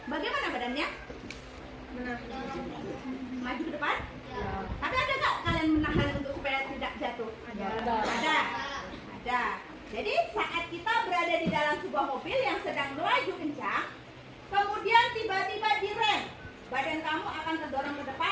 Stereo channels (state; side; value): identical; both; correlation 1.00